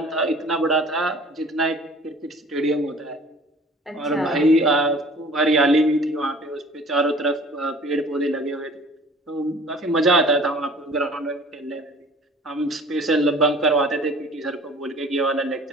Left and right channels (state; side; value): normal; both; correlation 0.48